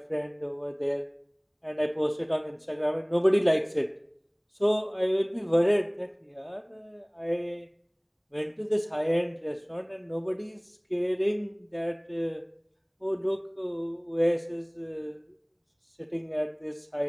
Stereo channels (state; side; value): identical; both; correlation 1.00